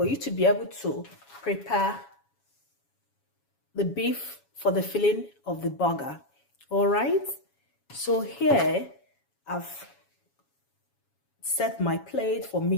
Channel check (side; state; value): right; late; 7.2 ms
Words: you to be able to prepare the beef for the filling of the burger. All right. So here I've set my plate for